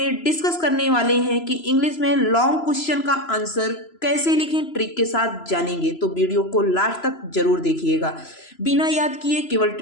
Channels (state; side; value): late; right; 3.0 ms